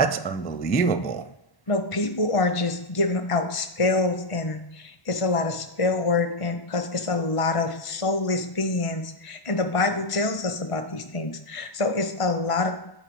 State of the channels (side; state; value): right; late; 1.1 ms